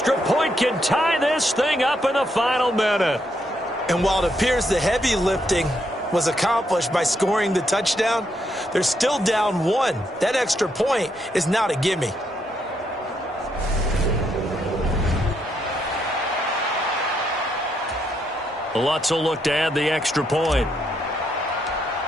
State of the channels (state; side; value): normal; both; correlation 0.77